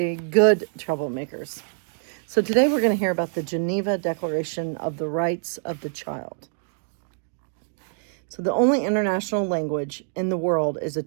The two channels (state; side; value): silent; left; digital silence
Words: good troublemakers. So today we're going to hear about the Geneva Declaration of the Rights of the Child. So the only international language in the world is a